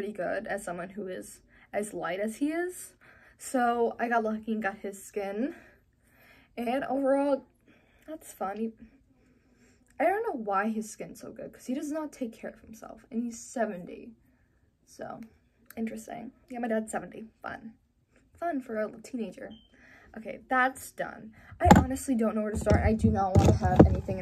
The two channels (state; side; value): identical; both; correlation 1.00